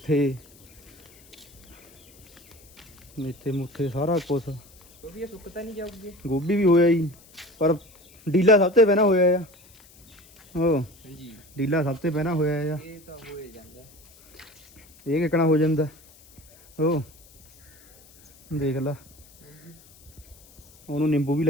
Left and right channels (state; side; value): noise; left; hiss, 26 dB below the sound